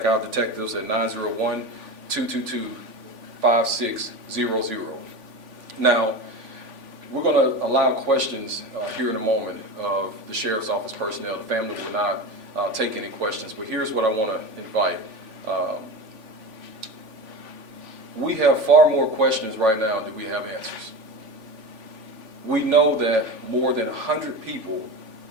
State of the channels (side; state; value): left; late; 3.5 ms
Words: our detectives at 901-222-5600. Now, we're going to allow questions here in a moment of the Sheriff's Office personnel. The family will not take any questions, but here's what I want to invite. We have far more questions right now than we have answers. We know that more than 100 people